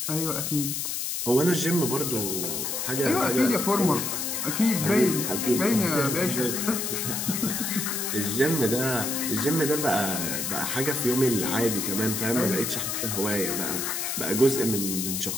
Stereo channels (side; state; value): left; noise; hiss, 2 dB below the sound